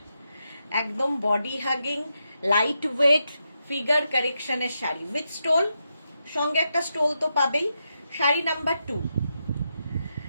একদম body hugging, light weight, figure কারেকশনের শাড়ি উইথ স্টোল, সঙ্গে একটা স্টোল তো পাবেই। শাড়ি নাম্বার 2,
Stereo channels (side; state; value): both; inverted; correlation -0.85